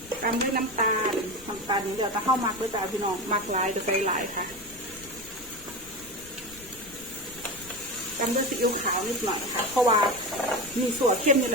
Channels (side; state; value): left; noise; rumble, 20 dB below the sound